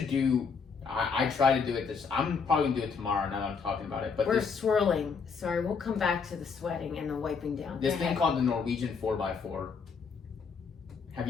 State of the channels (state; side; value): quieter; right; 5.5 dB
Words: do. I try to do it I'm probably gonna do it tomorrow now that I'm talking about it. But we're swirling. Sorry, we'll come back to the sweating and the wiping down. This thing called the Norwegian 4x4. What